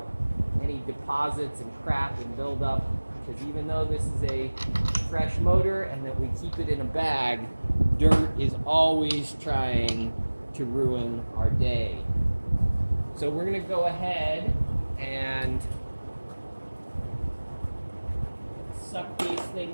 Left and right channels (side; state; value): both; inverted; correlation -1.00